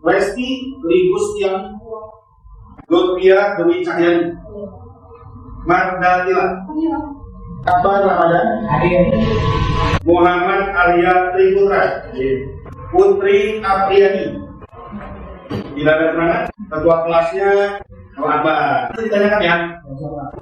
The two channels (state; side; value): identical; both; correlation 1.00